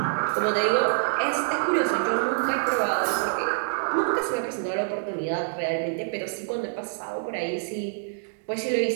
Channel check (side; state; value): left; silent; digital silence